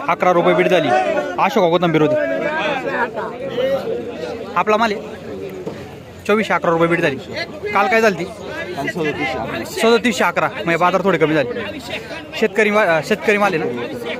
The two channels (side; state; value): both; identical; correlation 1.00